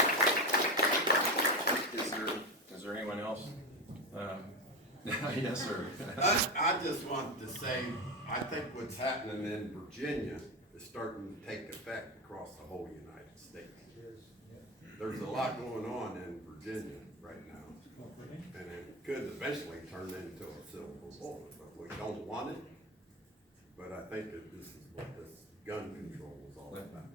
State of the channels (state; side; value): normal; both; correlation 0.18